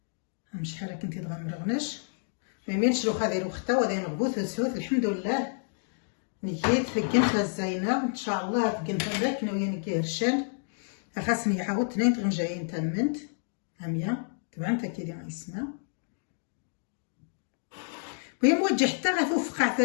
شحال كنتي تغمرغناش ما يمينش روح هذه روخته وهذا نغبوث وسوث الحمد لله نيت فكنت الزينه ان شاء الله فكنت ذاك ناويه نكي هرشان خاصني عاود تنين تغنجايين تمنت هميه طبعا انت كي ديما يسمع وهي موجه حتى غتوفق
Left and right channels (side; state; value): right; silent; digital silence